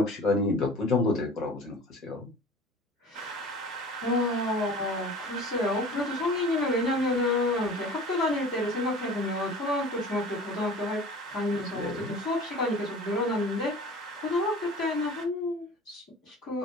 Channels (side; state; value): both; normal; correlation 0.41